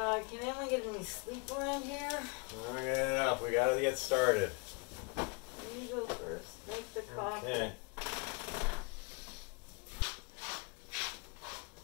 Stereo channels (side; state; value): right; quieter; 30.8 dB